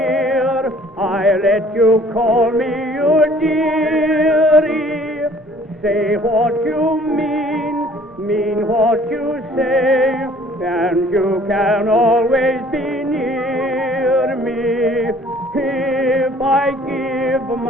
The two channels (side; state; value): both; normal; correlation 0.55